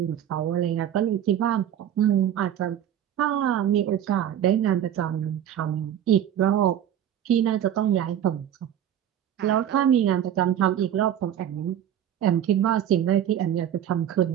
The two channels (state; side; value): quieter; left; 10.3 dB